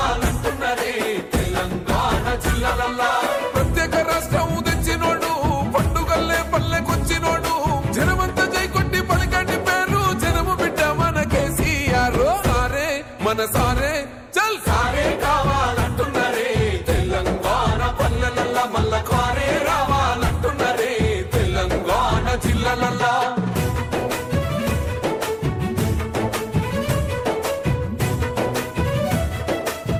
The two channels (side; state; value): both; identical; correlation 1.00